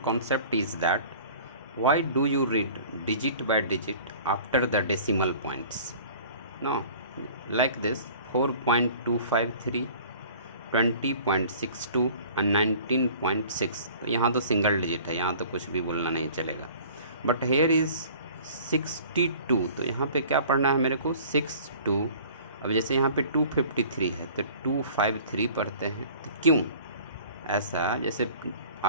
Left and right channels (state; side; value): inverted; both; correlation -0.47